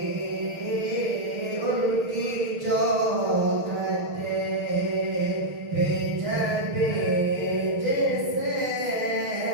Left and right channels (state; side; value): late; left; 6.6 ms